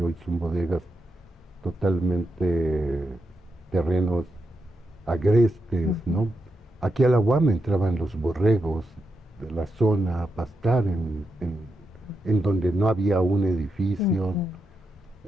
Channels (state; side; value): normal; both; correlation 0.86